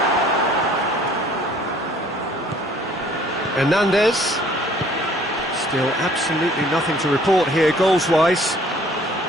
Hernandez. Still absolutely nothing to report here goals-wise.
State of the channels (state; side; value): normal; both; correlation 0.56